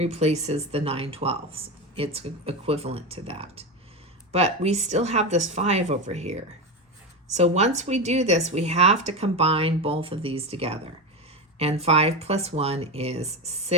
the 9/12. It's equivalent to that. But we still have this 5 over here. So once we do this, we have to combine both of these together. And 5 plus 1 is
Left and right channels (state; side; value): normal; both; correlation 0.17